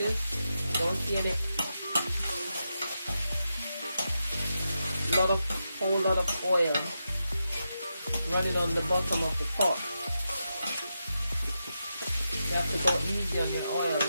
don't see any whole lot of oil running on the bottom of the pot. You have to go easy on your oil.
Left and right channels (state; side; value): inverted; both; correlation -0.87